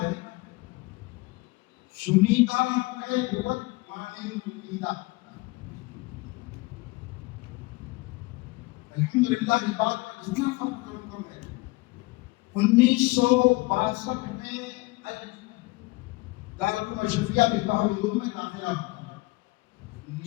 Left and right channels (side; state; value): right; quieter; 23.0 dB